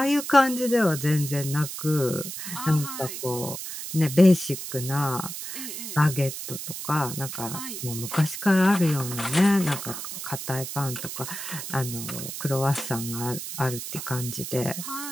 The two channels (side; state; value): right; noise; hiss, 7 dB below the sound